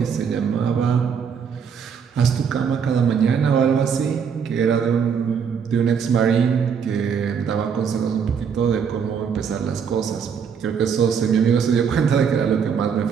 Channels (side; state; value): left; quieter; 6.8 dB